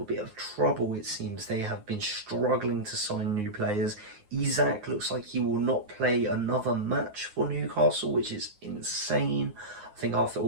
bit of trouble, it seems. They have been struggling to sign new players. Isak looks like he will not play another match for Newcastle, which is insane. I think after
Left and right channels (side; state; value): left; late; 9.6 ms